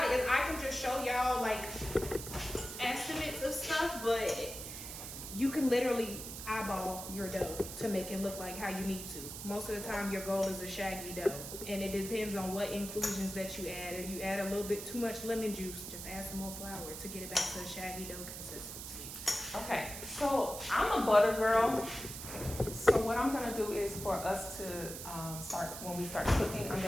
it is I can just show y'all like estimates of stuff, but you can literally eyeball your dough to make it look like how you need to. Most of the time your goal is a shaggy dough, and it depends on what inclusions that you add. If you add a little bit too much lemon juice, just add some more flour to get it back to a shaggy dough consistency. okay. So I'm a butter girl. So what I'm gonna do is for us to when we start cooking, I'm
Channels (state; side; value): noise; right; hiss, 9 dB below the sound